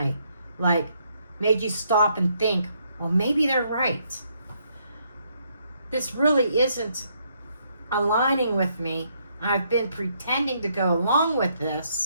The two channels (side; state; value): both; inverted; correlation -0.73